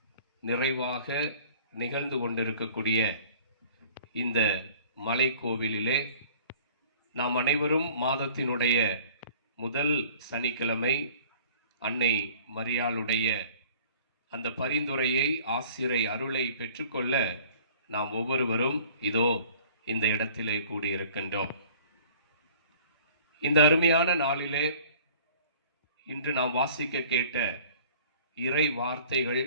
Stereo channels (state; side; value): inverted; both; correlation -0.50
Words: நிறைவாக நிகழ்ந்து கொண்டிருக்கக்கூடிய இந்த மலை கோவிலிலே நாம் அனைவரும் மாதத்தினுடைய முதல் சனிக்கிழமை அன்னை மரியாளுடைய அந்த பரிந்துரையை, ஆசிரை அருளை பெற்றுக்கொள்ள நாம் ஒவ்வொருவரும் இதோ இந்த இடத்திலே கூடியிருக்கின்றோம். இந்த அருமையான நாளிலே இன்று நாம் வாசிக்க கேட்ட இறை வார்த்தைகள்